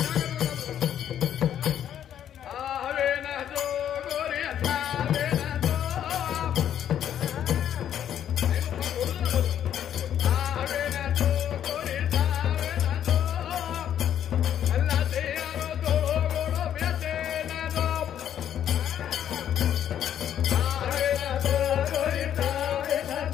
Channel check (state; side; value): quieter; right; 10.1 dB